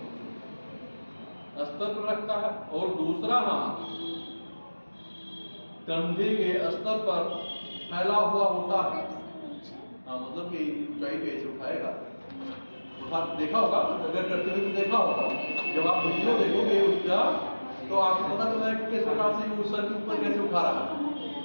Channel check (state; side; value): inverted; both; correlation -1.00